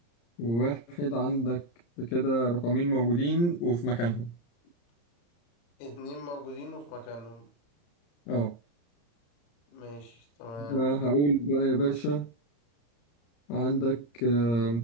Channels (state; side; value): late; right; 34 ms